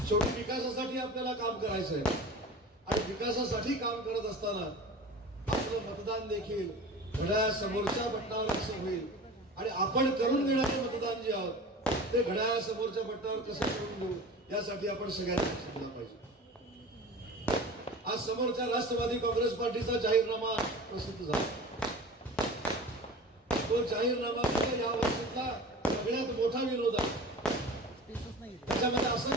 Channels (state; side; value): normal; both; correlation 0.36